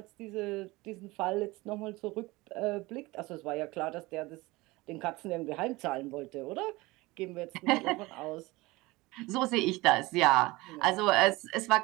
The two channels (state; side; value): quieter; left; 21.5 dB